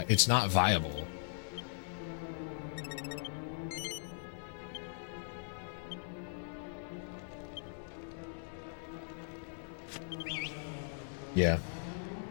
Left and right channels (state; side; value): silent; right; digital silence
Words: it's not viable. Yeah,